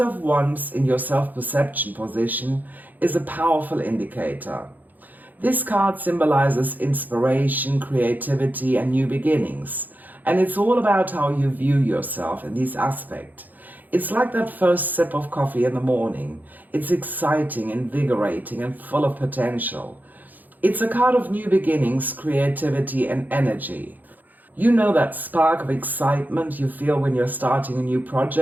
Wands in your self-perception position is a powerful indicator. This card symbolizes inspiration, creativity, and new beginnings. And it's all about how you view yourself in this aspect. It's like that first sip of coffee in the morning. It's exciting, invigorating, and full of potential. It's a card of new beginnings, creativity, and energy. You know that spark of excitement you feel when you're starting a new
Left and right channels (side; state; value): left; late; 0.084 ms